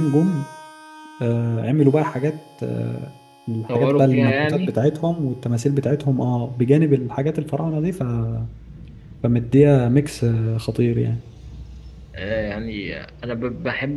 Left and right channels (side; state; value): both; identical; correlation 1.00